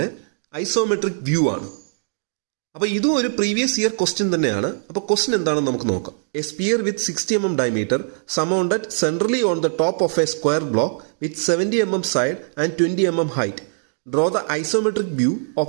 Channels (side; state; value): left; silent; digital silence